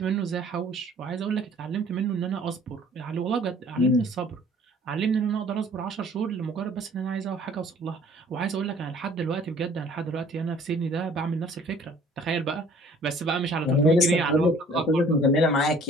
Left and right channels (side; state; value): both; normal; correlation 0.54